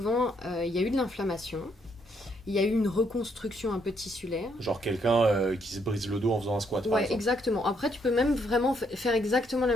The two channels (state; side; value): normal; both; correlation 0.73